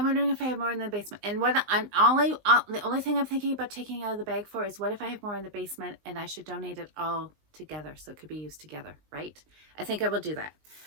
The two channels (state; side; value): late; left; 19 ms